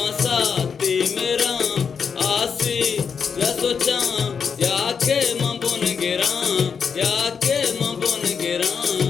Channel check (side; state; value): right; quieter; 6.3 dB